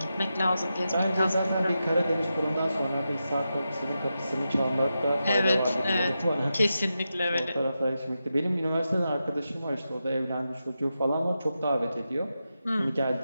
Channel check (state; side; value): inverted; both; correlation -0.89